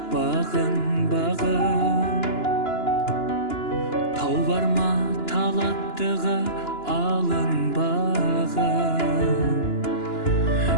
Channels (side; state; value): right; late; 2.9 ms